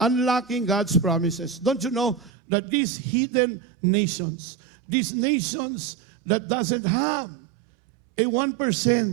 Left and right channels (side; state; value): left; drops out; at 2.3 s